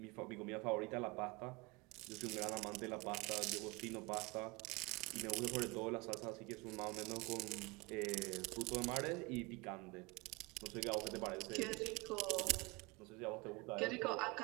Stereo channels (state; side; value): quieter; left; 25.1 dB